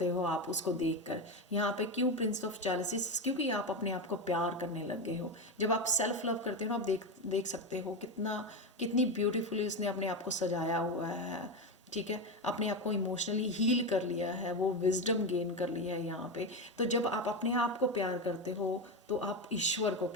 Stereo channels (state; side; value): normal; both; correlation 0.15